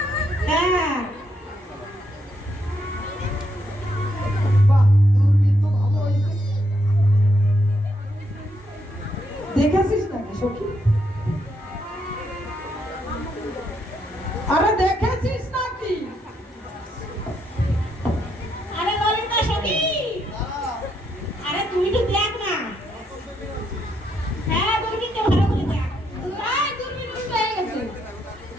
হ্যাঁ, বাহ, দূরবীন তো ভালো হয়েছে। দেখেছিস নাকি সখী? আরে দেখেছিস নাকি? আরে ললিতা সখী, আরে তুই তো দেখ না। হ্যাঁ, দূরবীনটা ভালো করে দেখ। তাই দূরবীন উল্টো হয়ে গেছে।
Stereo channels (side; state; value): both; normal; correlation 0.77